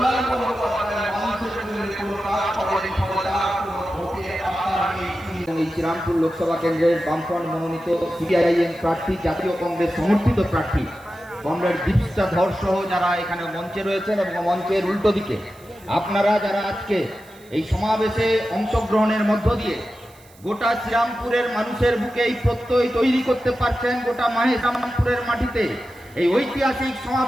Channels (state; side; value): noise; right; hiss, 27 dB below the sound